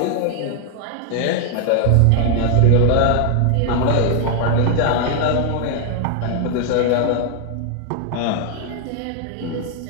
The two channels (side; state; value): both; different; correlation 0.00